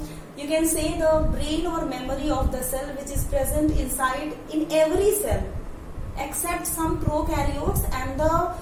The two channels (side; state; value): both; identical; correlation 1.00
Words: you can say the brain or memory of the cell which is present inside in every cell except some prokaryotes and the